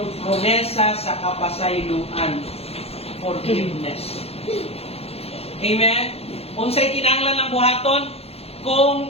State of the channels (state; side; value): late; right; 0.29 ms